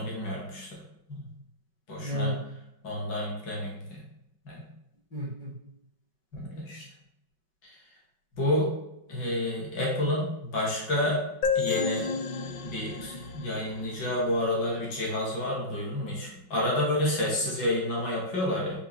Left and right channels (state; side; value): late; right; 5.3 ms